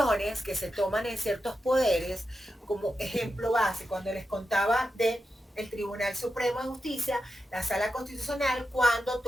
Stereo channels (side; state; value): both; normal; correlation 0.89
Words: que se toman en ciertos poderes, como ejemplo base, cuando les contaba de el Tribunal Supremo de Justicia, la Sala Constitucional, cuando